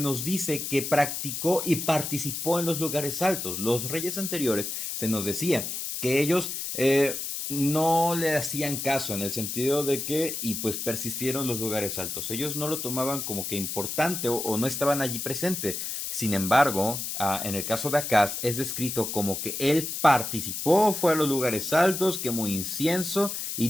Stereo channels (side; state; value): left; noise; hiss, 4 dB below the sound